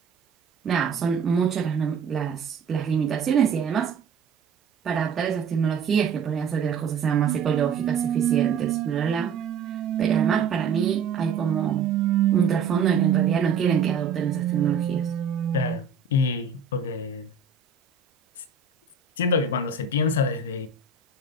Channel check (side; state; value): left; quieter; 5.7 dB